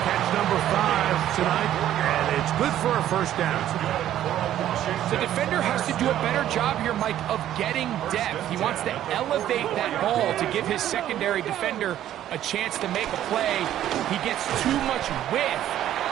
catch number 5 tonight, and it's good for a first down. The defender has to do a better job here, Mike, of getting depth. He wants to elevate that ball to give his secondary defender a chance to make a play. He gets too much width,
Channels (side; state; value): left; quieter; 12.0 dB